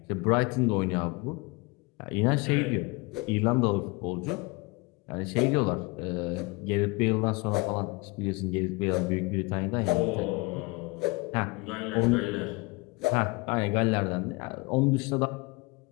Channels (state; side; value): quieter; right; 26.4 dB